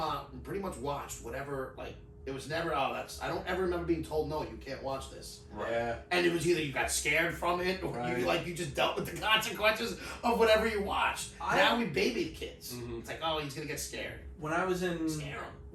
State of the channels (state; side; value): identical; both; correlation 1.00